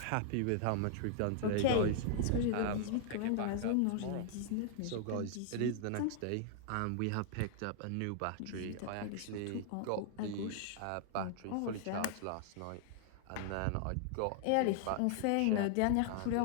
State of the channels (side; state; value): both; different; correlation 0.00